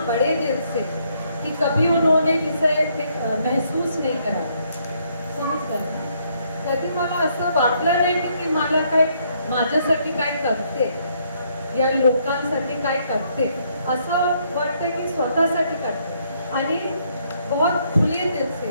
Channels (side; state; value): both; inverted; correlation -0.71